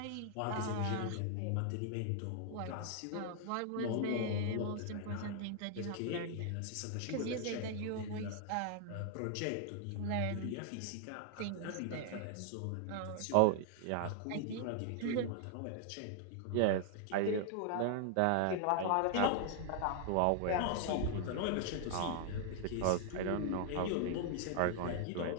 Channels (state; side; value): different; both; correlation 0.00